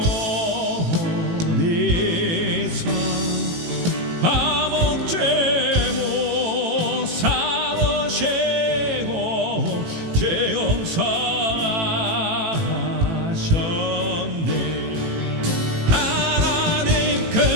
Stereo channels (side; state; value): left; late; 18 ms